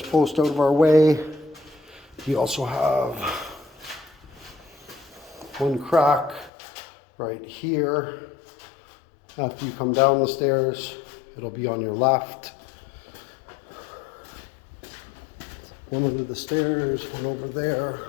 post out of our way. We also have one crack right here. After you come down the stairs, it'll be on your left. One under the stairs, one over there.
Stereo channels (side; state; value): right; drops out; at 6.5 s